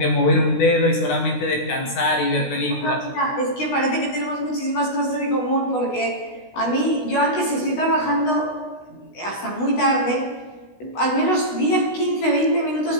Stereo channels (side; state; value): right; late; 16 ms